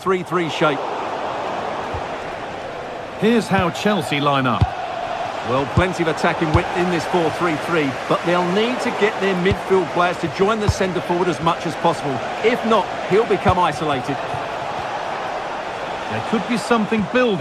shape. Here's how Chelsea line up. Well, plenty of attacking width in this 4-3-3, but they'll need to get their midfield players to join the centre forward as much as possible. If not, he'll become isolated. There could be something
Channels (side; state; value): both; identical; correlation 1.00